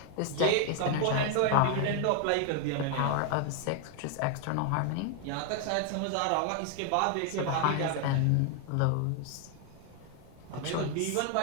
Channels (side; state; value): both; different; correlation 0.00